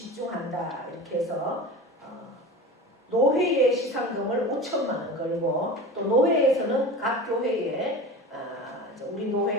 이렇게 해서 노회의 시상금을 5천만 원 걸고 또 노회에서는 각 교회에 우리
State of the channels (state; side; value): normal; both; correlation 0.32